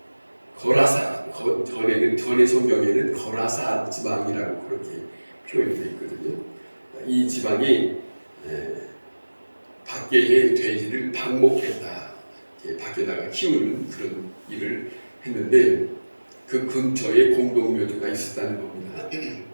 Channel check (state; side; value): inverted; both; correlation -1.00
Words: 거라사, 전의 성경에는 거라사 지방이라고 그렇게 표현되어 있거든요. 이 지방이 밖의 돼지를 방목했다, 밖에다가 키우는 그런 일을 했는데 그 근처에 공동묘지가 있었다는 겁니다.